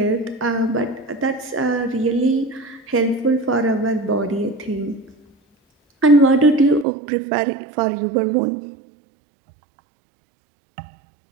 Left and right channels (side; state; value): left; drops out; at 6.9 s